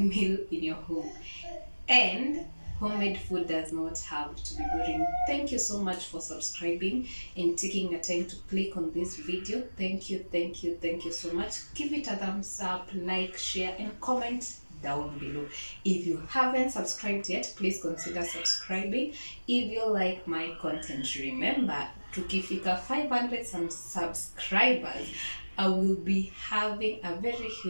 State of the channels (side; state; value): both; inverted; correlation -1.00